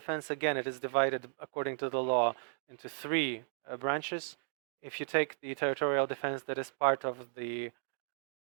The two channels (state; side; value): silent; left; digital silence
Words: again, it is divided according to the law into 3 branches. If you take the territorial defense that is part of the